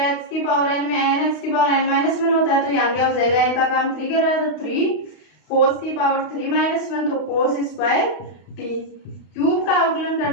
x की पावर n में n x की पावर n माइनस 1 होता है तो यहाँ क्या हो जाएगा n का काम 3 कर रहा है तो 3 कोस की पावर 3 माइनस 1 तो कोस स्क्वायर टी। क्यूब का अवकलन कर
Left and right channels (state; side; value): late; right; 32 ms